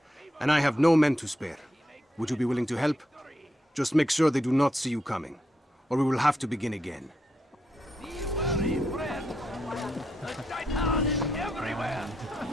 And I have no men to spare. Would you be willing to help? Just make sure they do not see you coming, or we will have to begin again.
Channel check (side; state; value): both; normal; correlation 0.82